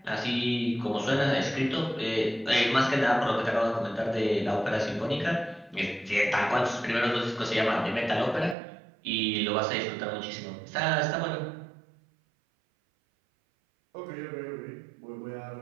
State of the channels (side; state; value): left; drops out; at 8.6 s